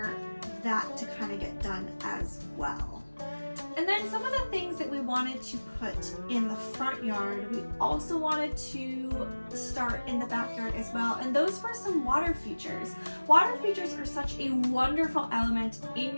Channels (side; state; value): both; inverted; correlation -1.00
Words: that to kind of get done as well. And then some of the things that we wanted to put in the front yard, we also wanted to start in the backyard as well. And those were some water features. Water features are such a wonderful element in